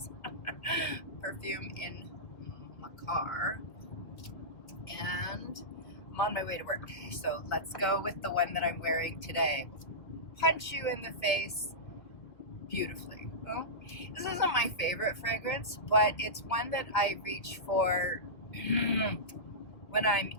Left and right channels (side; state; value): right; late; 2.0 ms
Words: perfume in my car. And I'm on my way to work. So let's go with the one that I'm wearing today. Punch you in the face beautifully. Well, this isn't my favorite fragrance, but it's one that I reach for when I'm